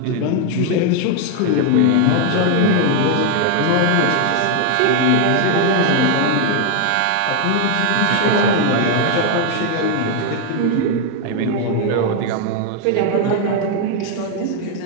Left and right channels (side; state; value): both; different; correlation 0.01